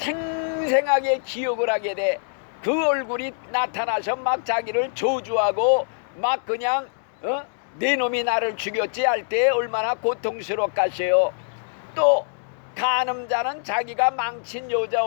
기억을 하게 돼. 그 얼굴이 나타나서 막 자기를 저주하고 막 그냥 내 놈이 나를 죽였지 할 때 얼마나 고통스럽겠어요. 또 간음자는 자기가 망친 여자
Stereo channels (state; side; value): silent; right; digital silence